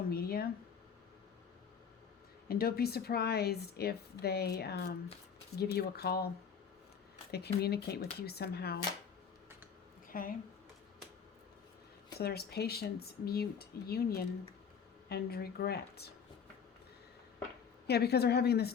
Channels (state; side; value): quieter; right; 6.8 dB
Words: media. And don't be surprised if they give you a call. They communicate with you somehow. Okay? So there's patience, mute, union, and regret. Yeah, because they're having